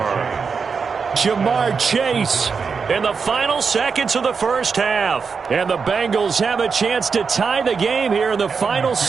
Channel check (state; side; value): quieter; left; 5.5 dB